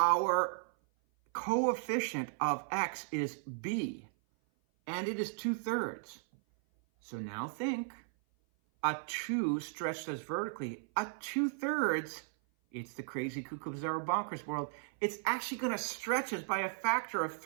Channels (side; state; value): left; silent; 54 dB below the other